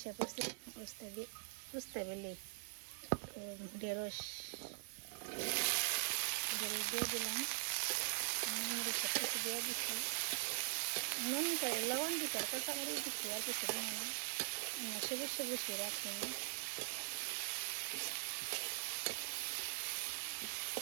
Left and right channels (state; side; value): silent; left; digital silence